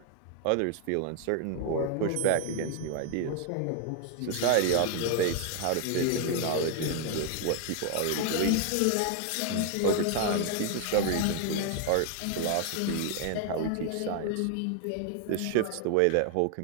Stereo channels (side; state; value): both; different; correlation 0.00